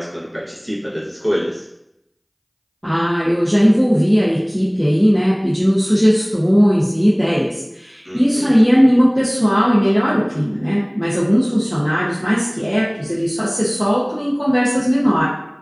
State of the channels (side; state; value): both; identical; correlation 1.00